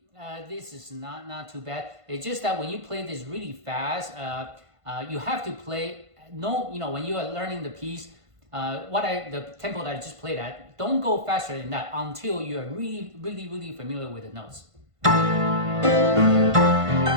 this is not too bad. It's just that when you play this really fast, you have to play. When you are learning the piece, the tempo that I just played at, don't go faster than that until you are really familiar with the notes.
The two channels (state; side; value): late; left; 1.5 ms